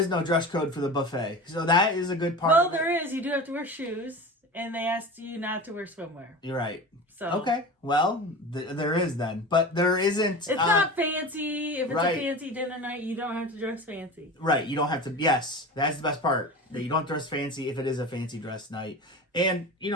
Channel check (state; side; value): normal; both; correlation 0.31